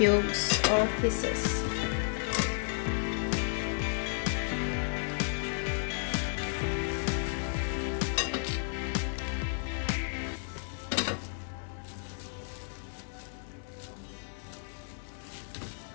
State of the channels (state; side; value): silent; right; 56 dB below the other